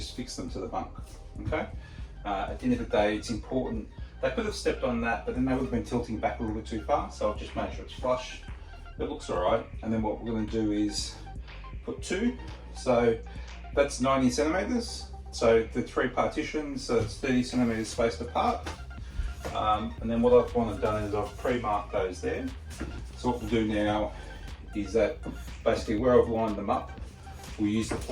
fixed them to the bunk, okay? At the end of the day, it's important. They could have stepped on that, but then they would have been tilting back a little bit too far, so I've just made sure it's flush. It looks alright, and then what we're going to do is put two. So that's 90 centimeters. So the three partitions, so it's 30 centimeters spaced apart. And then what I've wanted done is I've pre-marked those there. So what we'll do now is that basically where I've lined them up, we'll use the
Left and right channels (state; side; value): identical; both; correlation 1.00